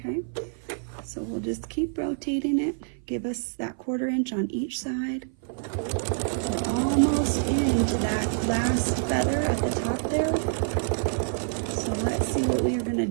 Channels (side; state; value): left; silent; 56 dB below the other